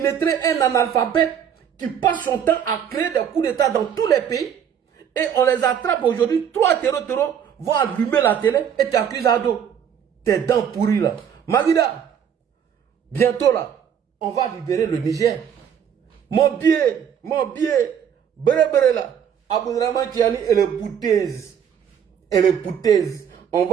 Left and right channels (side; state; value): left; quieter; 8.4 dB